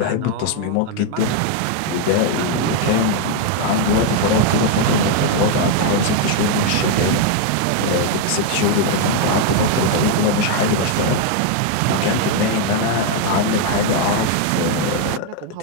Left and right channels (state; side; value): different; both; correlation 0.01